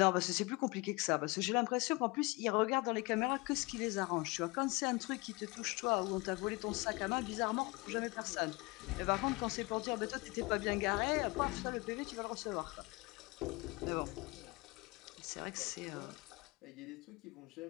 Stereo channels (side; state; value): right; quieter; 25.6 dB